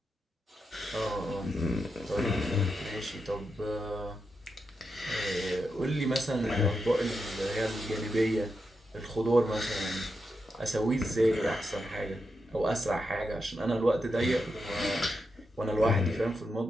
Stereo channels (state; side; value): normal; both; correlation 0.86